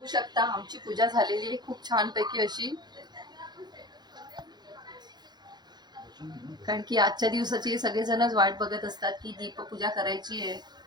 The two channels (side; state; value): left; late; 0.21 ms